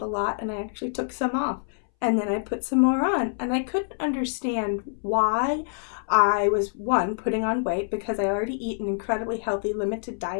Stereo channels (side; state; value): right; silent; 61 dB below the other